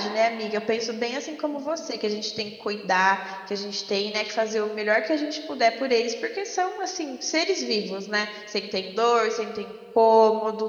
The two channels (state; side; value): identical; both; correlation 1.00